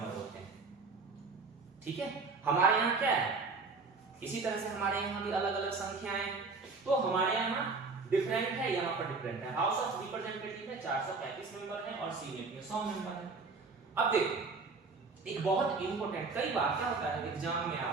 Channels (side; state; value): left; quieter; 4.2 dB